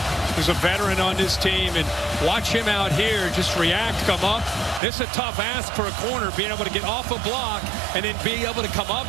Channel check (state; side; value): drops out; left; at 4.8 s